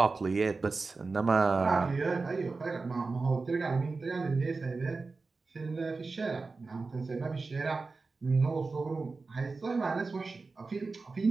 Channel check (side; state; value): left; quieter; 4.0 dB